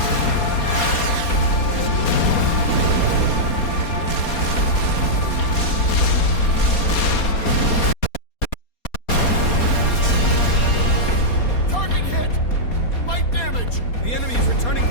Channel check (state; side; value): late; right; 4.2 ms